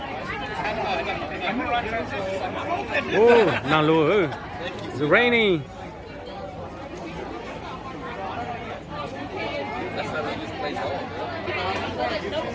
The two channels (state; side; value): identical; both; correlation 1.00